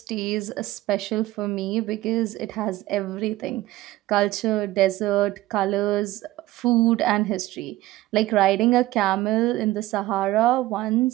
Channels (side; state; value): left; quieter; 17.0 dB